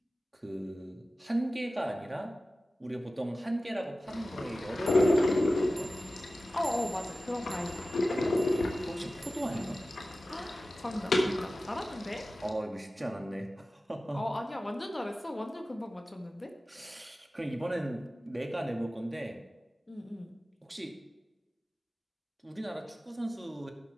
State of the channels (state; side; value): normal; both; correlation 0.96